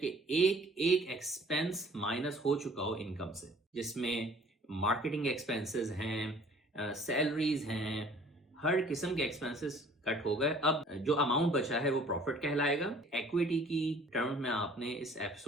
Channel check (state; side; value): normal; both; correlation 0.53